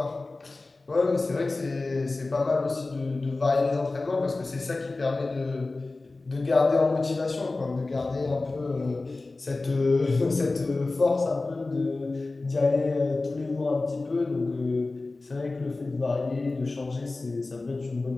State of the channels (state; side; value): quieter; right; 3.4 dB